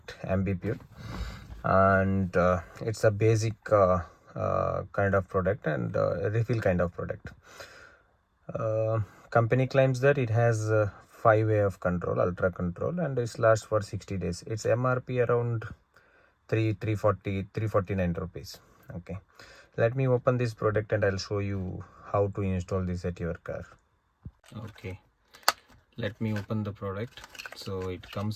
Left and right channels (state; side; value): identical; both; correlation 1.00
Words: Ambi Pur, and it's a basic kind of product and refill kind of product. Company claims that it has 5 way of control, ultra control, and it lasts for 60 days. Its MRP around 349 rupees. Okay, let me open this product and I'll show you how to install this at your car. Okay, let me open the product. So it